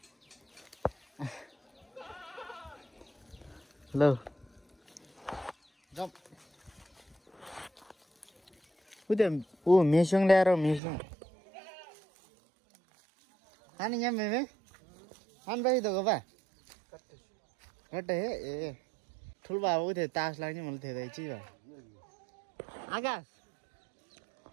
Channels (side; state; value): left; drops out; at 10.8 s